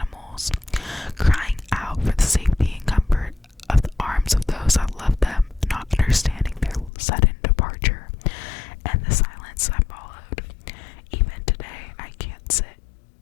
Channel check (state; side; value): drops out; right; at 6.9 s